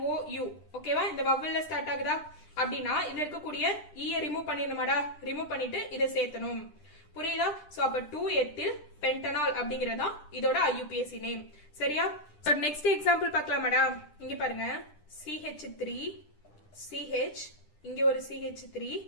ஓகேவா இந்த வவல்ல ஸ்டார்ட் ஆகுதா அப்படின்னா இதுல இருக்கக்கூடிய ஈய ரிமூவ் பண்ணிடணுமாடா ரிமூவ் பண்ணிட்டு இதை சேர்த்தணும் புரியுதா சோ அப்ப 2 எத்தில் பென்டனால் அப்படிங்கறதா இதோட IUPAC நேம் சரியா சோ நெக்ஸ்ட் எக்ஸாம்பிள் பார்க்கலாமாடா இங்க பாருங்க CH3 CH இங்க ஒரு CH3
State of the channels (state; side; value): late; right; 10 ms